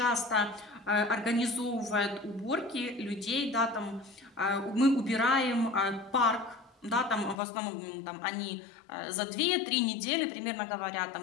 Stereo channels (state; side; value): drops out; right; at 7.4 s